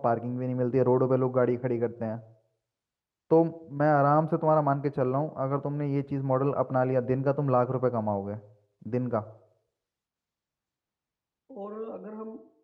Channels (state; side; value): identical; both; correlation 1.00